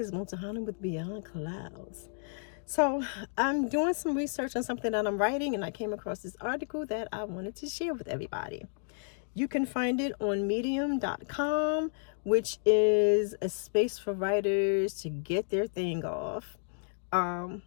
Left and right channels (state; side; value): silent; right; digital silence